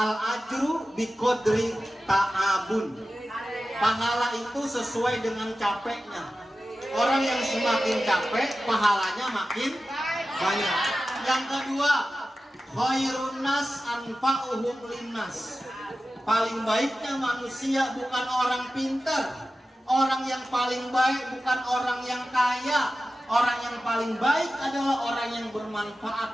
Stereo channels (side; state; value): both; normal; correlation 0.94